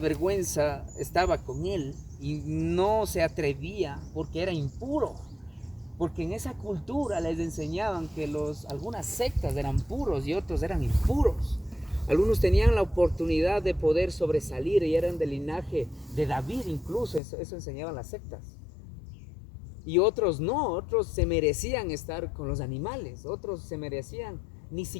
estaba con él y no se atrevía porque era impuro. Porque en esa cultura les enseñaban que algunas sectas eran puros y otros eran impuros. Algunos tenían la oportunidad de poder sobresalir y eran del linaje de David incluso, eso enseñaban las sectas. Y otros no, otros se merecían estar con los animales, otros ni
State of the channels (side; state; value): right; drops out; at 17.2 s